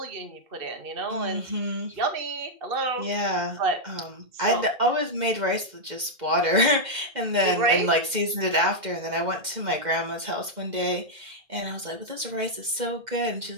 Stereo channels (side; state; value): left; late; 2.1 ms